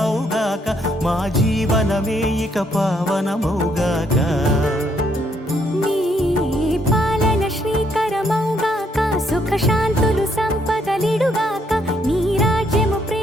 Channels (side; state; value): both; normal; correlation 0.71